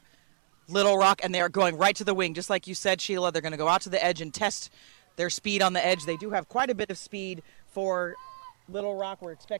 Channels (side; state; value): left; silent; 59 dB below the other